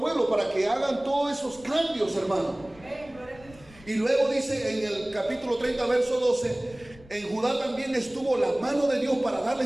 pueblo para que hagan todos esos cambios, hermano. Y luego dice en el capítulo 30, verso 12, en Judá también estuvo la mano de Dios para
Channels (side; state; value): left; noise; rumble, 23 dB below the sound